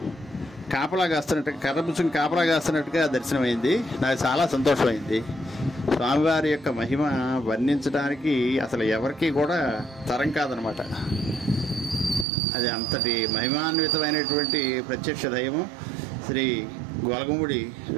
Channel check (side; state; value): left; drops out; at 12.2 s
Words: కాపలా కాస్తున్నట్టుగా, కర్రపుచ్చుని కాపలా కాస్తున్నట్టుగా దర్శనమైంది. నాకు చాలా సంతోషమైంది. స్వామివారి యొక్క మహిమ వర్ణించడానికి అసలు ఎవరికి కూడా తరం కాదనమాట. అది అంతటి మహిమాన్వితమైనటువంటి ప్రత్యక్ష దైవం శ్రీ గొలగమూడి